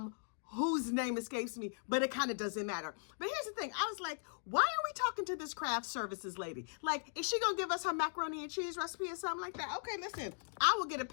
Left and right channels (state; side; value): silent; right; digital silence